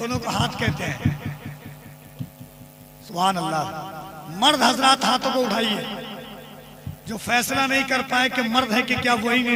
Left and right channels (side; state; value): both; identical; correlation 1.00